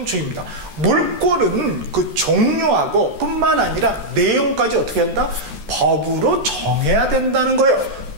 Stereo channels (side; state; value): left; late; 14 ms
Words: 물권은 그 종류하고 뿐만 아니라 내용까지 어떻게 한다? 법으로 정해야 된다는 거예요.